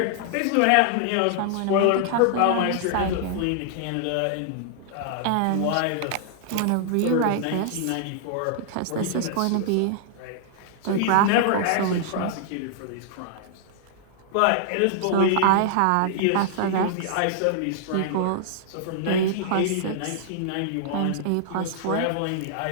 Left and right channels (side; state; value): both; different; correlation -0.01